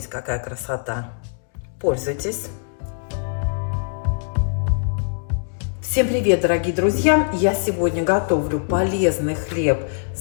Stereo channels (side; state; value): right; silent; digital silence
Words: какая красота! Пользуйтесь! Всем привет, дорогие друзья! Я сегодня готовлю полезный хлеб